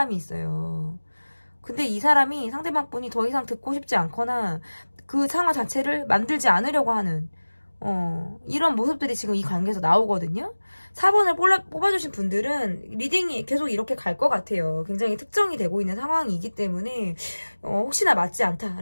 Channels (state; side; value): inverted; both; correlation -1.00